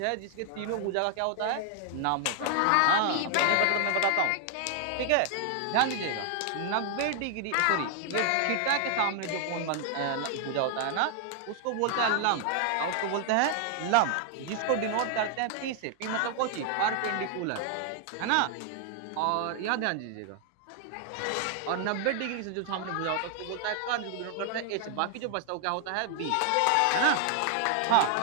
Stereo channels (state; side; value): different; both; correlation 0.00